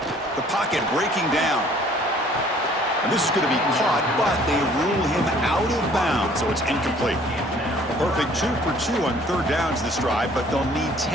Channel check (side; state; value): both; normal; correlation 0.57